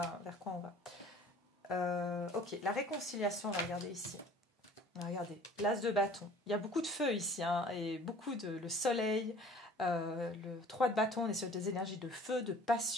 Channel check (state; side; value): normal; both; correlation 0.49